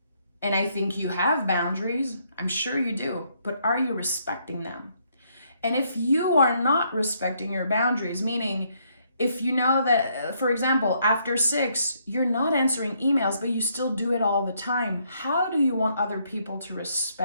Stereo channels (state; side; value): inverted; both; correlation -0.72